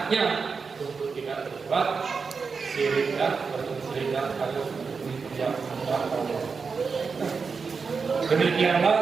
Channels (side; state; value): left; quieter; 5.1 dB